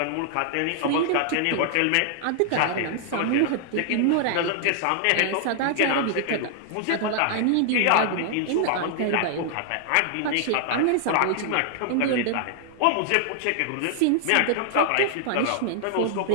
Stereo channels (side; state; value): both; different; correlation -0.01